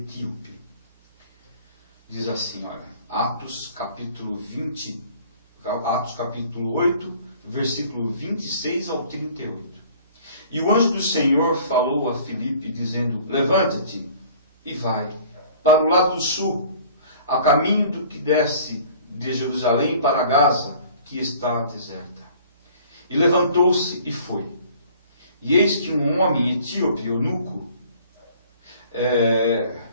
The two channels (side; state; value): both; inverted; correlation -0.51